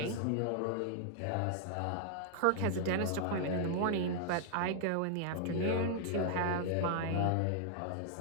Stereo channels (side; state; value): both; different; correlation -0.01